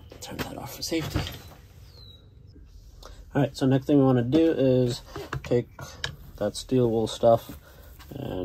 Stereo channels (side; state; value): both; identical; correlation 1.00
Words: Turn that off for safety. All right, so next thing we want to do is take that steel wool stuff,